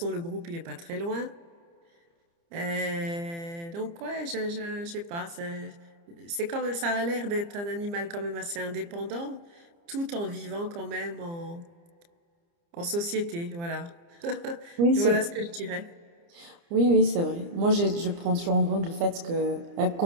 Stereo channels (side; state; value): left; late; 29 ms